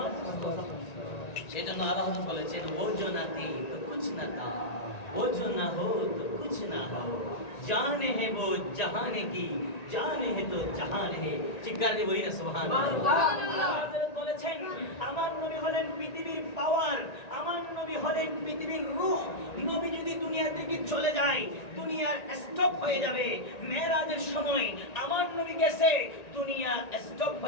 সেই জন্য আল্লাহ বলেছেন, ও जो ना थी तो कुछ ना था, वो जो ना हो तो कुछ ना हो, जान है वो जहान की, जान है तो जहान है। চিৎকার দিয়ে বলি না সুবহানাল্লাহ। হযরত বলেছেন, আমার নবী হলেন পৃথিবীর পাওয়ার, আমার নবী হলেন পৃথিবীর রূহ। নবী যদি দুনিয়া থেকে চলে যায়, দুনিয়ার স্টপ হয়ে যাবে। মেরাজের সময় আমার নবী গেছে, দুনিয়া স্টপ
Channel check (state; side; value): late; right; 1.9 ms